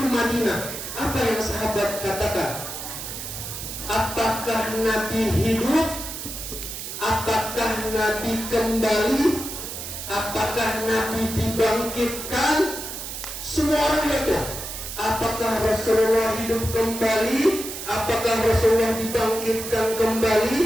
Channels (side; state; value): right; noise; hiss, 8 dB below the sound